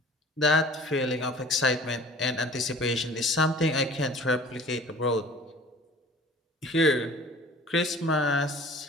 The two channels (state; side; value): normal; both; correlation 0.47